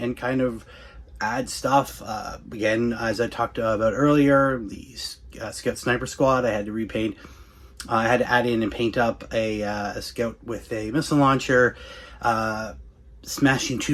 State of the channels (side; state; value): both; identical; correlation 1.00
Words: kind of add stuff. Again, as I talked about earlier, the Scout Sniper Squad, I had to repaint. I had to add in and paint up a Scout with a missile launcher, smashing